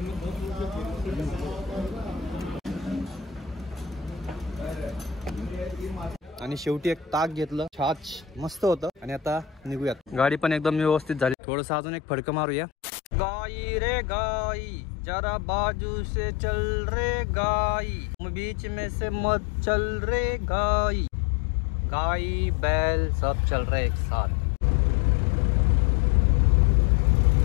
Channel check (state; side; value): drops out; right; at 11.4 s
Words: आणि शेवटी एक ताक घेतलं. छाछ मस्त होतं. आणि आता निघूयात. गाडी पण एकदम व्यवस्थित झाली. थोडस अजून एक फडकं मारूया. गाई रे गाई जरा बाजू से चल रे गाई, बीच में से मत चल रे गाई. गाई बैल सब चल रहे एक साथ.